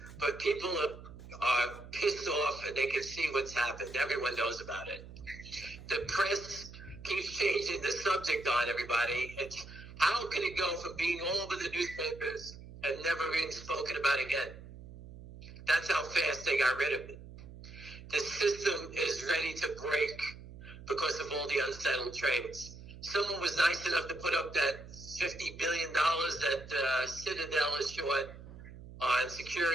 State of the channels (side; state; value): right; noise; hum, 15 dB below the sound